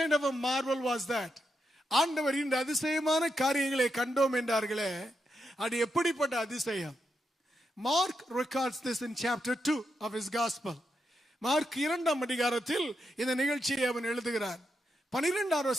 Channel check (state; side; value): normal; both; correlation 0.84